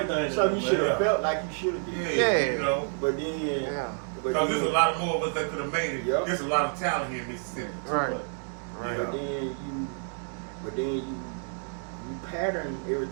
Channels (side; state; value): left; silent; 59 dB below the other